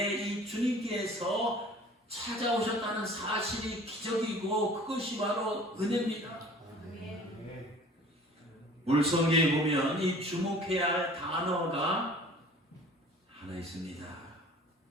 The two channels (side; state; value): both; normal; correlation 0.47